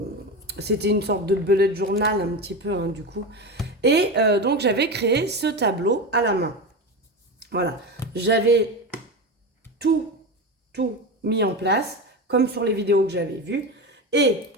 C'était une sorte de bullet journal un petit peu hein, du coup. Et donc j'avais créé ce tableau à la main. Voilà, j'avais tout, tout mis en place, comme sur les vidéos que j'avais vues. Et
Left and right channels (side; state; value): both; normal; correlation 0.21